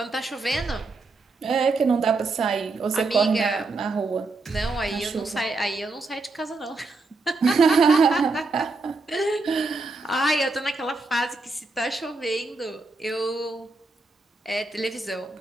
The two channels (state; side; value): quieter; left; 3.5 dB